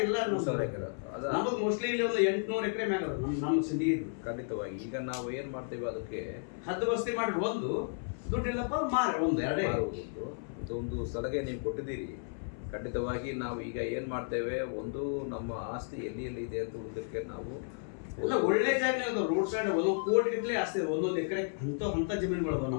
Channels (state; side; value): silent; right; 56 dB below the other